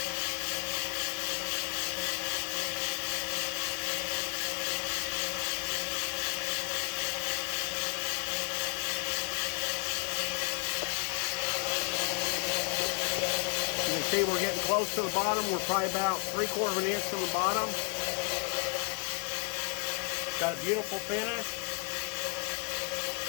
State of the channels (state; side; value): quieter; right; 37.4 dB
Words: You can see we're getting close to the bottom. We're probably about 3/4 of an inch from the bottom. Got a beautiful finish.